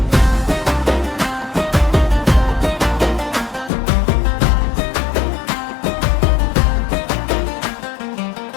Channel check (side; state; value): right; drops out; at 3.7 s